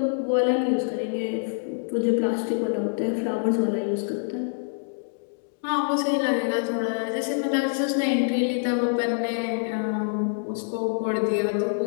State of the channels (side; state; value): right; silent; 61 dB below the other